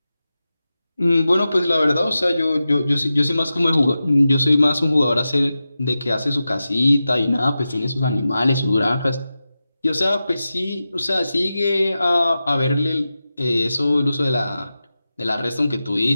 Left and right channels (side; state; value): both; inverted; correlation -0.93